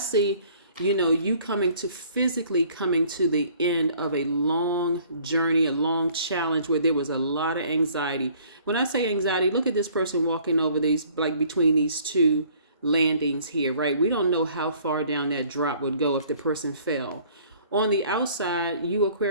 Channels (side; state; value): both; inverted; correlation -0.57